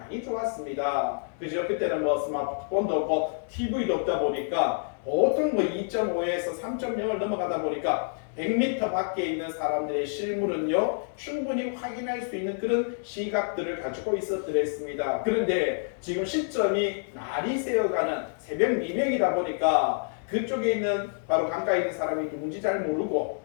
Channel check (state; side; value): silent; right; digital silence